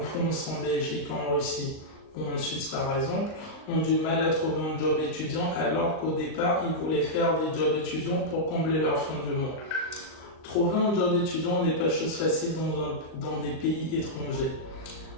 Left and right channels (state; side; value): late; right; 38 ms